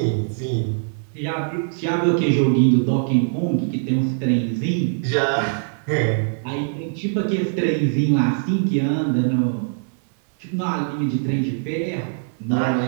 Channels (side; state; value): left; silent; digital silence